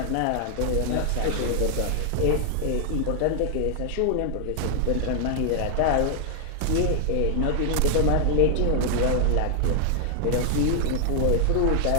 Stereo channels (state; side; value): different; both; correlation 0.00